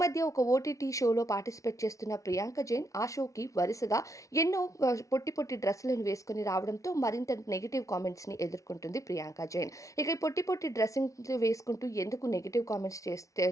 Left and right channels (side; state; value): right; late; 0.16 ms